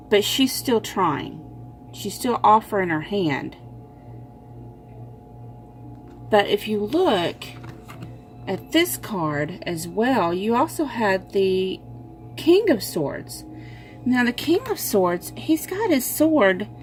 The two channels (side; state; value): both; identical; correlation 1.00